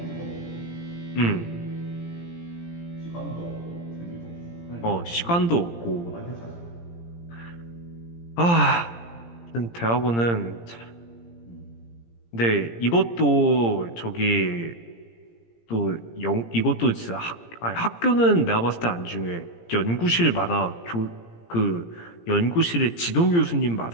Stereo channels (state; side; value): late; right; 17 ms